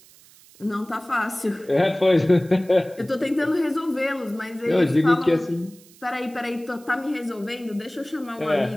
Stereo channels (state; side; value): noise; right; hiss, 25 dB below the sound